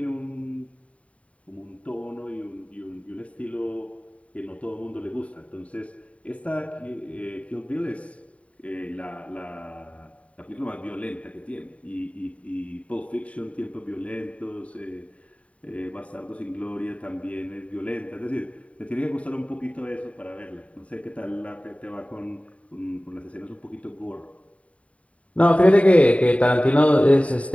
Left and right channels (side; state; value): right; late; 0.066 ms